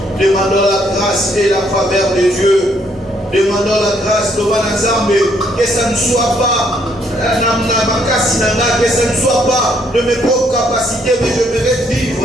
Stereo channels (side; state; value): both; normal; correlation 0.69